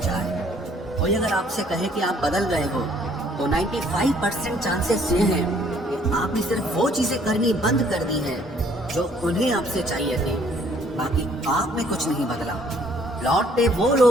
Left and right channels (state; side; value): normal; both; correlation 0.61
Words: कोई अगर आपसे कहे कि आप बदल गए हो तो 95% चांसेस ये हैं कि आपने सिर्फ वो चीजें करनी बंद कर दी हैं जो उन्हें आपसे चाहिए थी। बाकी आप में कुछ नहीं बदला। लौटते वो